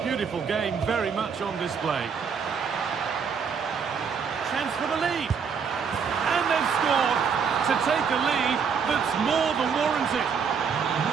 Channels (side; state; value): left; quieter; 6.3 dB